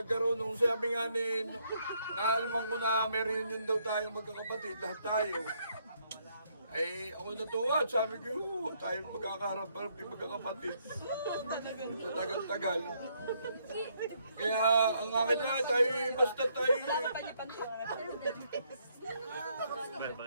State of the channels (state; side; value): inverted; both; correlation -0.72